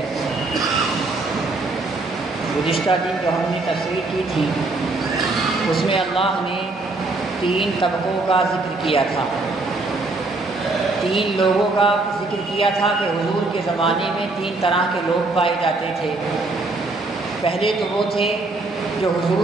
گزشتہ دن جو ہم نے تفسیر کی تھی اس میں اللہ نے 3 طبقوں کا ذکر کیا تھا، 3 لوگوں کا ذکر کیا تھا کہ حضور کے زمانے میں 3 طرح کے لوگ پائے جاتے تھے۔ پہلے تو وہ تھے جو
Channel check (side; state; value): left; quieter; 3.3 dB